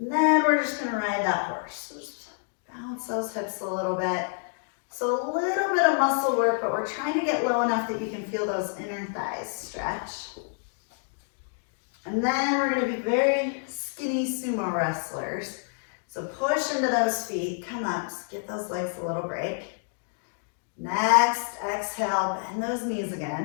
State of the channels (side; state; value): right; silent; 56 dB below the other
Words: then we're just going to ride that horse. So just bounce those hips a little bit. So a little bit of muscle work, but we're trying to get low enough that you can feel those inner thighs stretch. And then we're going to be very skinny sumo wrestlers. So push into those feet, come up, give those legs a little break. Next, exhale, bend those knees